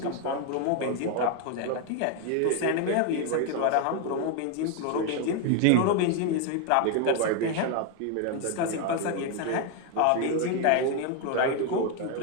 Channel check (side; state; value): both; different; correlation 0.01